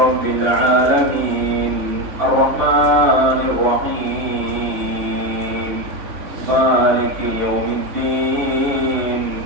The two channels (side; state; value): left; late; 3.5 ms